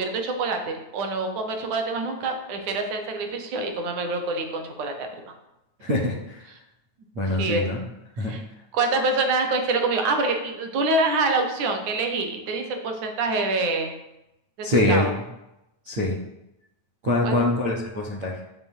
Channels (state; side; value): late; left; 9.2 ms